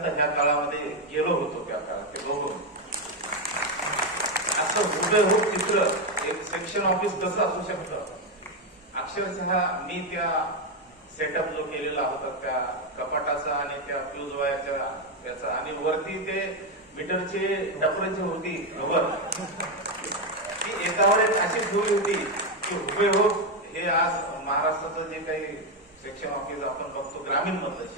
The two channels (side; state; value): both; normal; correlation 0.07